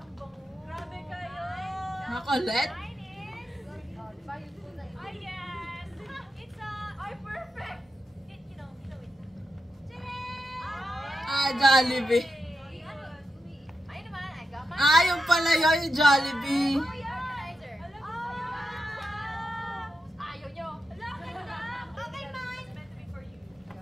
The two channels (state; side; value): normal; both; correlation 0.88